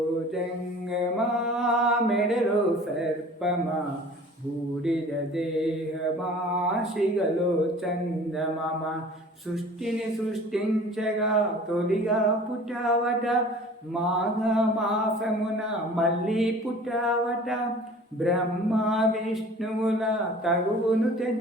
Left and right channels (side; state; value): both; normal; correlation 0.46